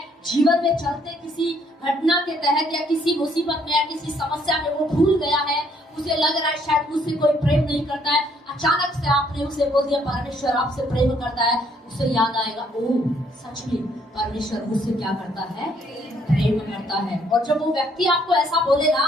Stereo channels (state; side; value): normal; both; correlation 0.67